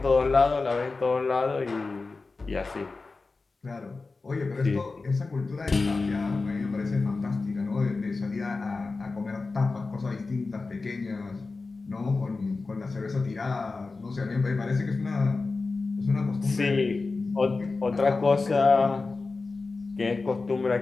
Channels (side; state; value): right; quieter; 3.9 dB